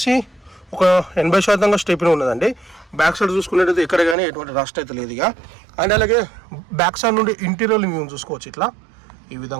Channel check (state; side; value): drops out; left; at 4.2 s